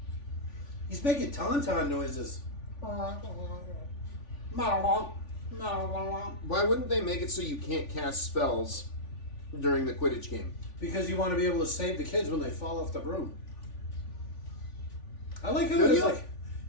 He's making tauntaun noises. Why wouldn't they make it so you can't cast spells during the Quidditch game? Because you want to be able to save the kids when they fall off the broom. I like how Do it is you? like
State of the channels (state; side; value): late; right; 3.5 ms